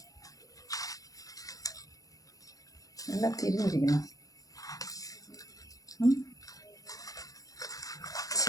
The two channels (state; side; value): late; right; 0.17 ms